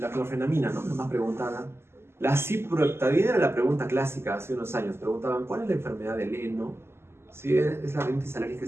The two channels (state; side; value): late; left; 0.12 ms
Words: ¿no? Nos preguntaban. La ciproheptadina era la pregunta clásica hace unos años. Preguntaban, ¿cuál es la enfermedad del heno? Sí, es la rinitis alérgica